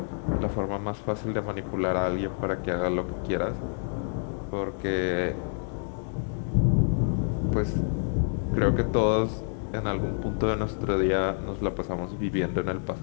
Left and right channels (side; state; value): right; silent; digital silence